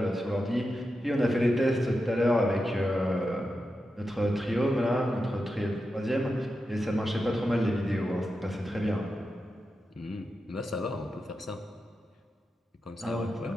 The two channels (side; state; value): both; normal; correlation 0.89